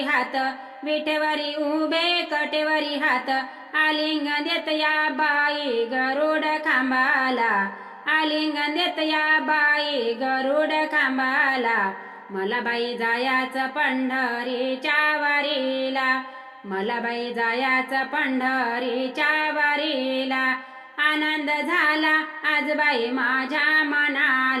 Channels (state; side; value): identical; both; correlation 1.00